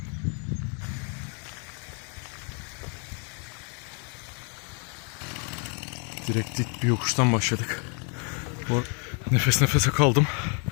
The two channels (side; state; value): right; quieter; 38.5 dB